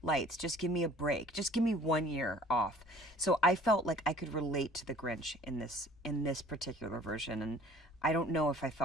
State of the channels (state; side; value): normal; both; correlation 0.51